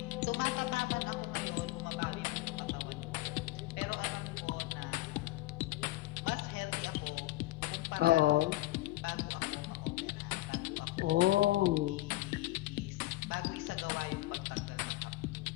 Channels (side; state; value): right; quieter; 18.1 dB